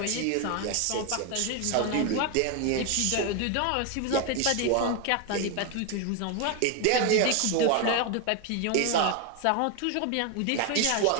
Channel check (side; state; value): both; different; correlation 0.01